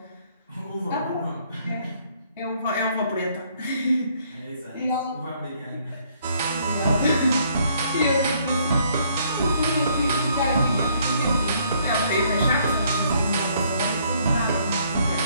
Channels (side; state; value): both; inverted; correlation -0.66